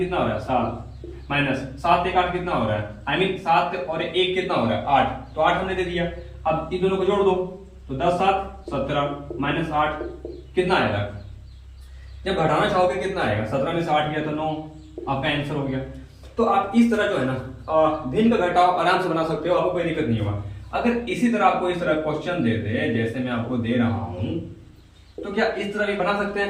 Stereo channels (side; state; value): both; identical; correlation 1.00